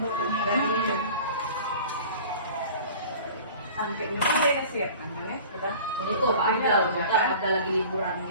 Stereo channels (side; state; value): both; inverted; correlation -0.43